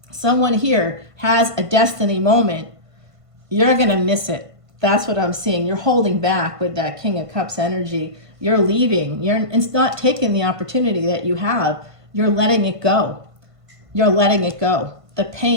Someone here has a destiny moment. You're gonna miss it. That's what I'm seeing. You're holding back with that King of Cups energy. You're leaving. It's not taking the opportunity that you have. You're letting it go. You're letting it go. The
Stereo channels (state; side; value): late; left; 1.5 ms